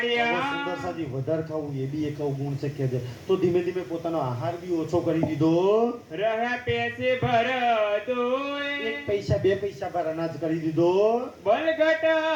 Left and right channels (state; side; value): identical; both; correlation 1.00